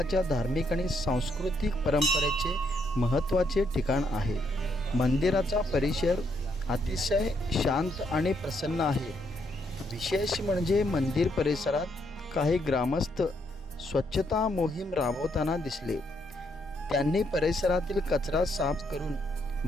धार्मिक आणि सांस्कृतिक परंपरेचे महत्त्वाचे ठिकाण आहे. मंदिराचा परिसर अतिशय शांत आणि प्रसन्न आहे. विशेष म्हणजे मंदिर परिसरात काही ग्रामस्थ स्वच्छता मोहीम राबवताना दिसले. त्यांनी परिसरातील कचरा साफ करून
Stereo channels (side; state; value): both; normal; correlation 0.75